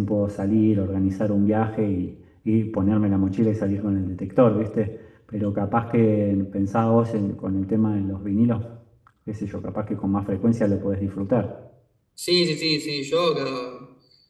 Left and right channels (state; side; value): identical; both; correlation 1.00